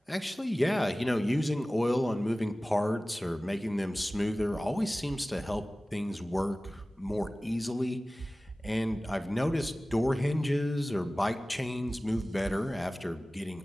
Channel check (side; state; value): both; normal; correlation 0.98